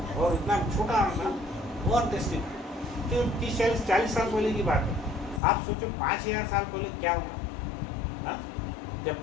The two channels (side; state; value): right; drops out; at 5.4 s